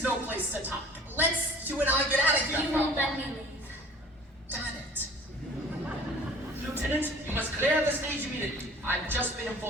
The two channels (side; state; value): both; normal; correlation 0.48